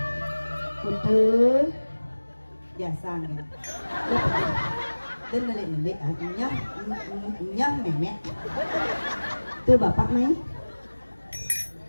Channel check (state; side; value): inverted; both; correlation -1.00